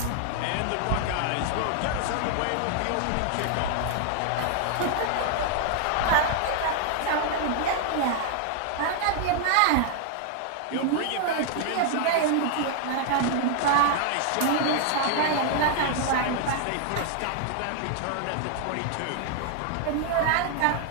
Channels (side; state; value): both; different; correlation 0.00